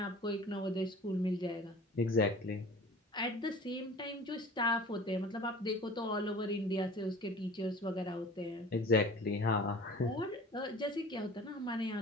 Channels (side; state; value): both; normal; correlation 0.43